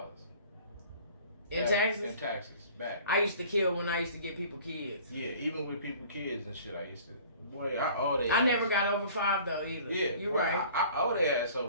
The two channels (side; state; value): both; inverted; correlation -0.48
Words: In taxes? In taxes back. I used to kill when I used to get people kids. Yeah, even with people kids and shit, I used to. Boy, I owe their I ass. never got over 5 though either. Yeah, you boy, right. I owe their ass